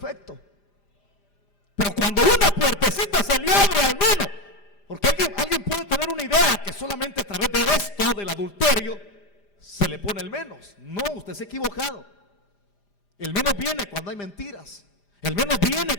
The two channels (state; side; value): late; right; 5.0 ms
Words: Pero cuando una puertecita se le abre al menos, porque alguien puede tener una idea que solamente a través de esto, del adulterio, se le pone el menos. No, usted se ha equivocado. El menos viene cuando hay mentiras. El menos viene